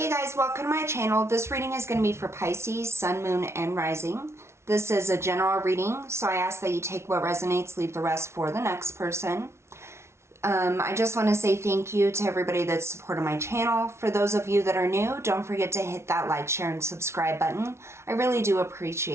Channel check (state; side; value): late; left; 0.13 ms